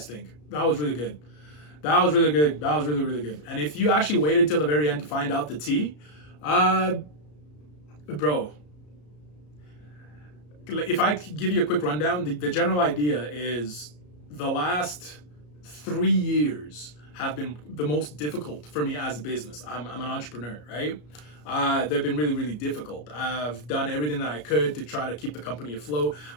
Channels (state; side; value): late; right; 33 ms